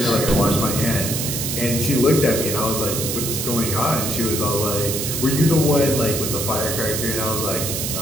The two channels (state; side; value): noise; right; hiss, 2 dB below the sound